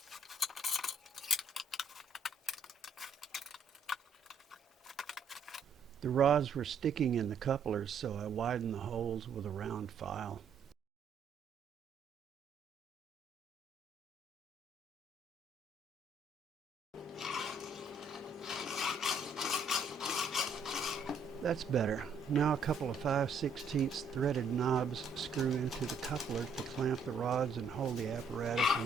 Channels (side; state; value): left; quieter; 3.8 dB